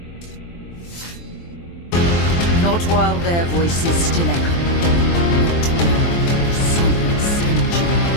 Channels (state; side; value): late; right; 23 ms